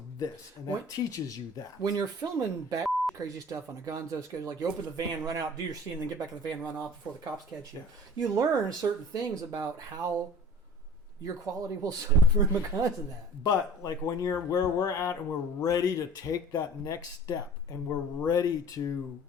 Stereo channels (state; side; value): normal; both; correlation 0.44